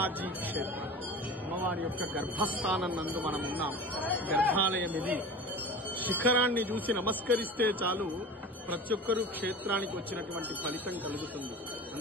క్షేత్రం. అమ్మవారి యొక్క గర్భస్థానం నందు మనం ఉన్నాం. గర్భాలయం ఇది. శిఖరాన్ని చూసి నమస్కరిస్తే చాలు ప్రతి ఒక్కరూ క్షేత్రానికి వచ్చినటువంటి ఫలితం కలుగుతుంది.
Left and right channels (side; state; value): both; normal; correlation 0.34